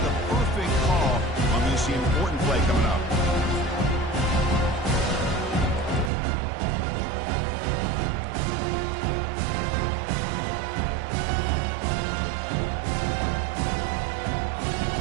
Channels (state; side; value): drops out; left; at 6.1 s